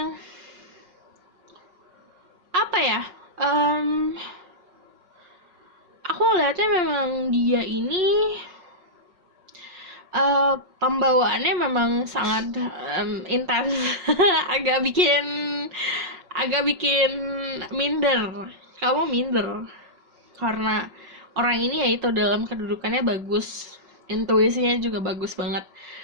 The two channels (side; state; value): left; late; 5.3 ms